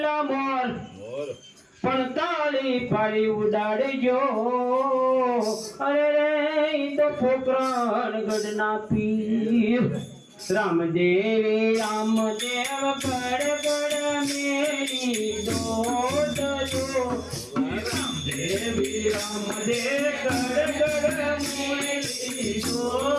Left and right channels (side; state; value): both; identical; correlation 1.00